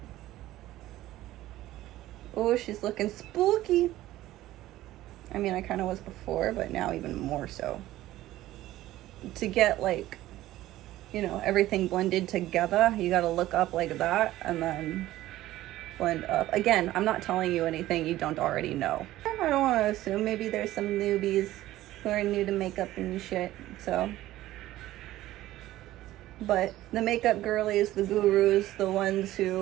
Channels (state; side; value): quieter; left; 15.3 dB